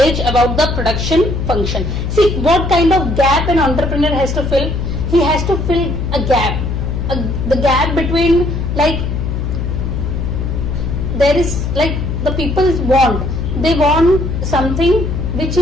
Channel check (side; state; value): left; noise; hum, 2 dB below the sound